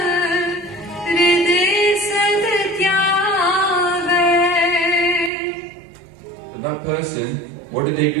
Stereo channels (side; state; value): left; drops out; at 5.3 s